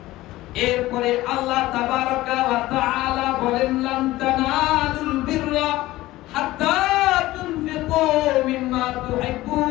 এরপরে আল্লাহ তাবারাকা ওয়া তাআলা বলেন লান তানালুল বিররা হাত্তা তুনফিকু মিম্মা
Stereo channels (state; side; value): quieter; right; 17.2 dB